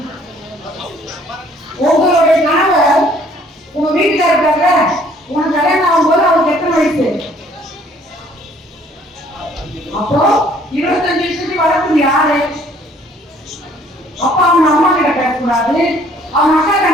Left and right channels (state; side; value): normal; both; correlation 0.60